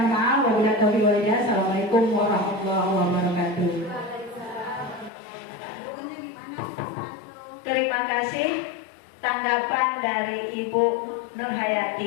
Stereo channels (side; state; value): right; drops out; at 5.1 s